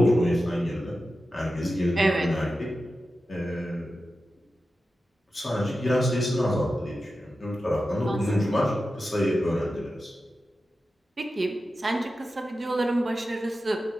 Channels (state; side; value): normal; both; correlation 0.92